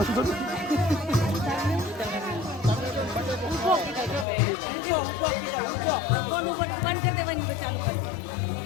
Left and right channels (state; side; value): drops out; right; at 4.2 s